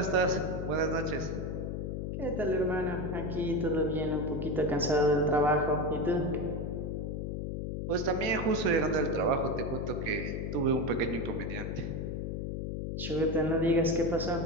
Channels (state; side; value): noise; left; hum, 3 dB below the sound